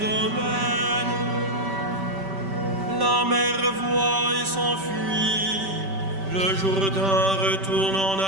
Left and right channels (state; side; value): late; left; 5.2 ms